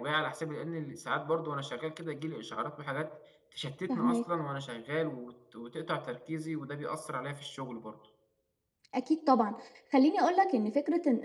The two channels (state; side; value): identical; both; correlation 1.00